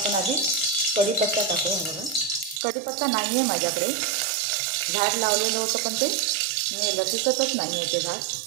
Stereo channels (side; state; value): left; drops out; at 2.6 s